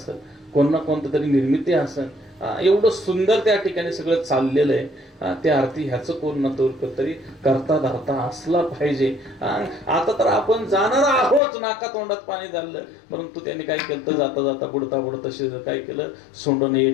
कोण ना कोणतं तरी निर्मिती असेल. एवढं सुंदर त्या ठिकाणी सगळं चाललेलं आहे. त्या अर्थी ह्याचं कोण ना तरी करता धरता असला पाहिजे. आता तर आपण जाणार आहोत, नाका तोंडात पाणी झालं, परंतु त्यांनी काय केलं तर जाता जाता बुडता काय केलं, सोंडून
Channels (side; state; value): right; drops out; at 11.4 s